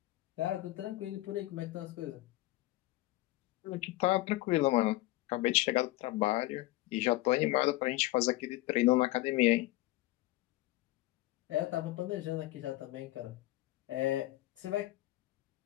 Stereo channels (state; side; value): quieter; right; 17.9 dB